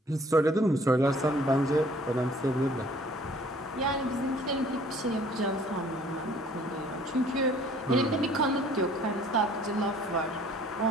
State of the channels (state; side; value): normal; both; correlation 0.55